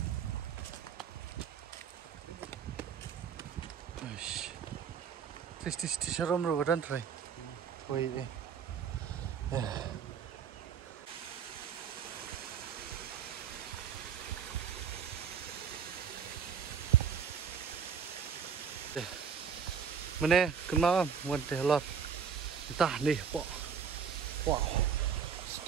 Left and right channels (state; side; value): quieter; left; 7.1 dB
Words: Aish. Tis sharom ro dan try. Koi eh. Mana kena mun teh lot. Entah nih, po. Wow.